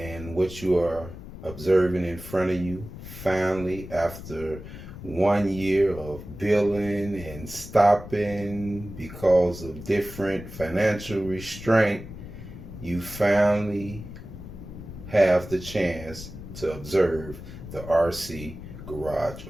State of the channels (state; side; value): noise; left; rumble, 12 dB below the sound